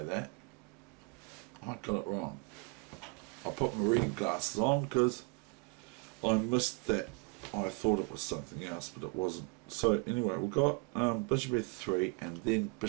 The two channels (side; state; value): left; quieter; 29.9 dB